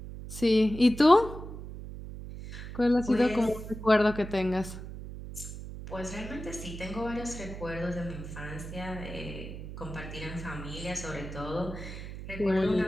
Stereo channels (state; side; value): noise; right; hum, 10 dB below the sound